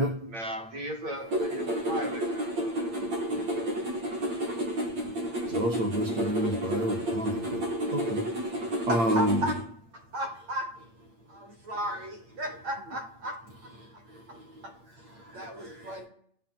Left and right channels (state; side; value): late; left; 8.7 ms